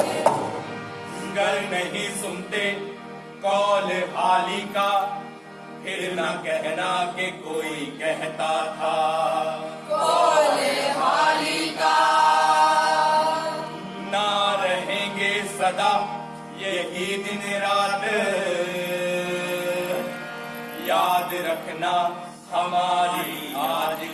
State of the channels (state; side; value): identical; both; correlation 1.00